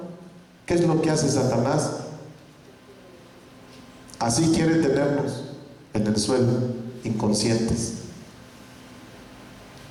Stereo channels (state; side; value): identical; both; correlation 1.00